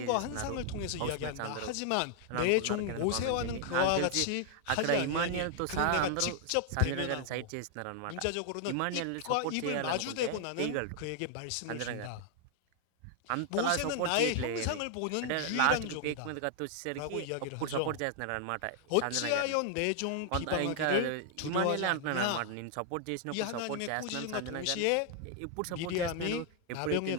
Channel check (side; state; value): both; different; correlation 0.00